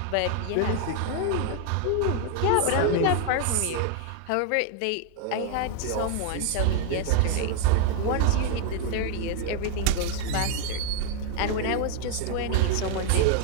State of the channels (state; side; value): different; both; correlation 0.00